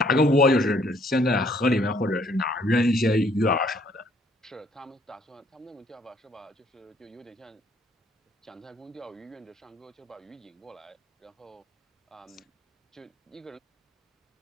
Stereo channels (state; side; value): normal; both; correlation 0.64